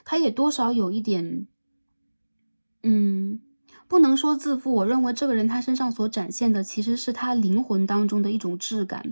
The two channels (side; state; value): both; inverted; correlation -1.00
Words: 他也多少有一点不能说自负，我认为这个人他身上所展现的其实是他灵魂当中的一种质